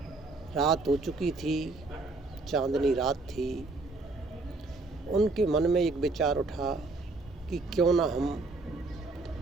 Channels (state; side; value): quieter; left; 3.4 dB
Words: रात हो चुकी थी, चांदनी रात थी। उनके मन में एक विचार उठा कि क्यों ना हम